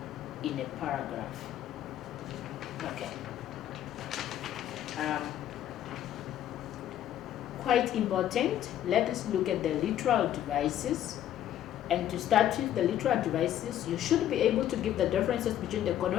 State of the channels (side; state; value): right; quieter; 11.6 dB